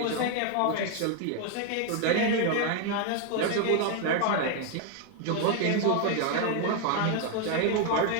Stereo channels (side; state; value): both; different; correlation 0.01